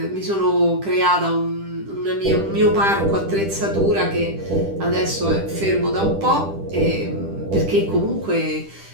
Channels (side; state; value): left; late; 10 ms